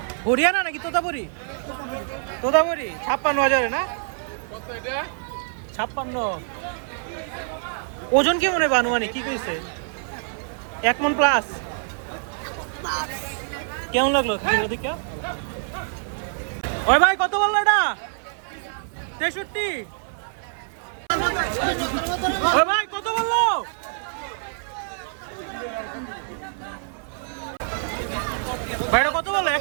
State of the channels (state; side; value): silent; left; 61 dB below the other